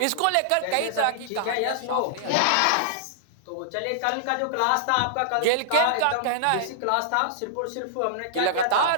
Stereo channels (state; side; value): different; both; correlation -0.01